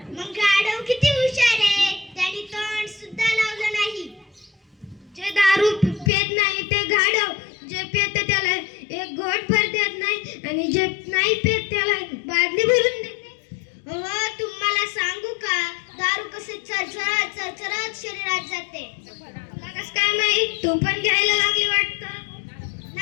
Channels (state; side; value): drops out; right; at 6.1 s